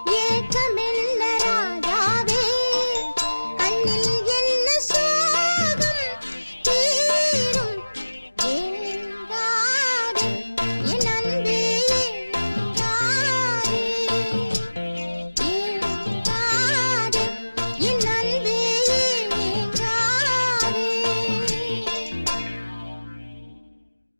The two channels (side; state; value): both; inverted; correlation -1.00